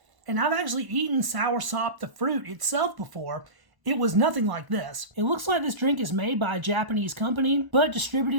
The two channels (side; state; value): left; late; 1.0 ms